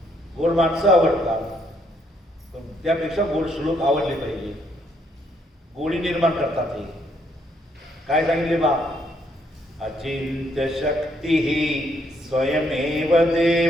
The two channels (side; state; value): both; normal; correlation 0.71